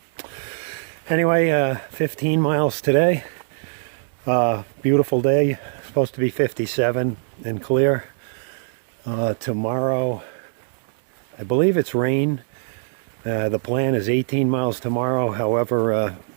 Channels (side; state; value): left; silent; digital silence